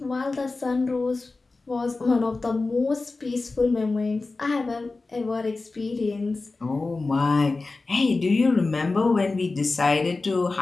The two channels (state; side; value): quieter; right; 3.6 dB